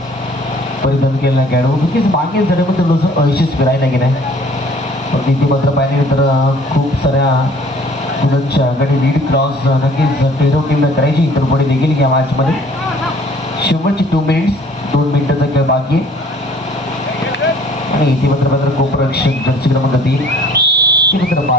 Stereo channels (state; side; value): normal; both; correlation 0.54